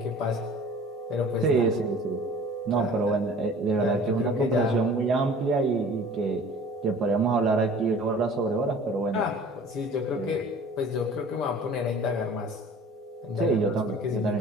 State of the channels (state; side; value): normal; both; correlation 0.47